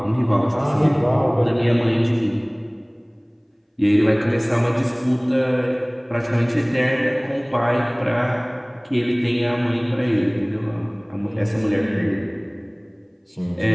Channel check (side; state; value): both; identical; correlation 1.00